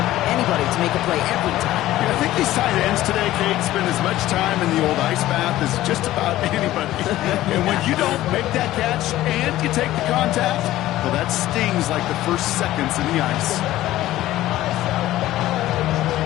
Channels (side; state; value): right; quieter; 15.1 dB